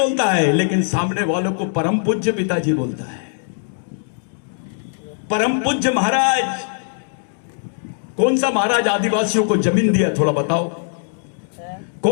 है, लेकिन सामने वालों को परम पूज्य पिताजी बोलता है। परम पूज्य महाराज, कौन सा महाराज आदिवासियों को जमीन दिया? थोड़ा बताओ,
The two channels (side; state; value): right; silent; digital silence